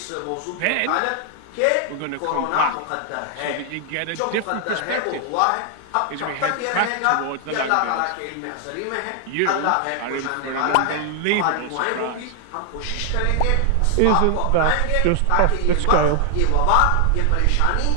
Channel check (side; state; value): both; different; correlation 0.00